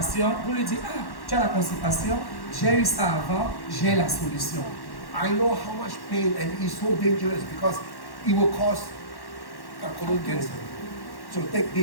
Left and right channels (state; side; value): late; right; 1.1 ms